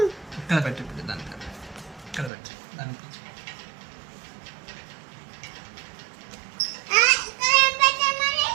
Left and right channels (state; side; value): drops out; left; at 2.3 s